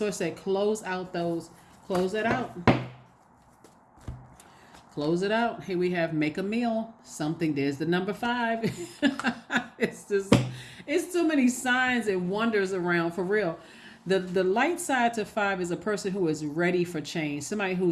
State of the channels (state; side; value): identical; both; correlation 1.00